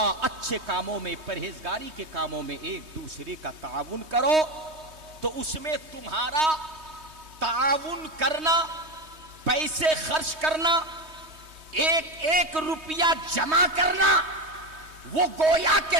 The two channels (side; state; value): left; late; 3.2 ms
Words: اچھے کاموں میں، پرہیزگاری کے کاموں میں ایک دوسرے کا تعاون کرو، تو اس میں تمہارا تعاون کرنا، پیسے خرچ کرنا، ایک ایک روپیہ جمع کرنا، وہ گویا کہ